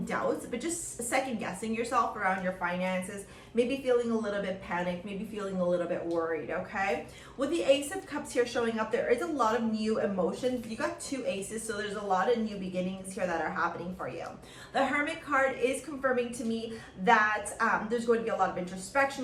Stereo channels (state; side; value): identical; both; correlation 1.00